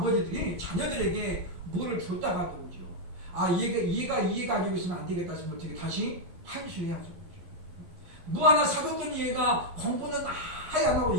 자녀들에게 뭐를 줬다가도 오죠. 얘가 가지고 있으면 안 되겠다 싶으면 어떻게 다시 환수해야죠. 뭐 하나 사줬더니 얘가 공부는 아예 안 하고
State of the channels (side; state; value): left; late; 11 ms